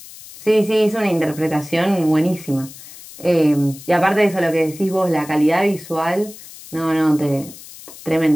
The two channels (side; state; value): left; noise; hiss, 17 dB below the sound